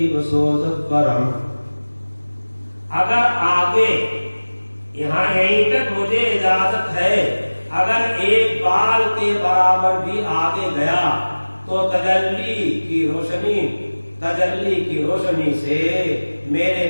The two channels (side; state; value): both; inverted; correlation -1.00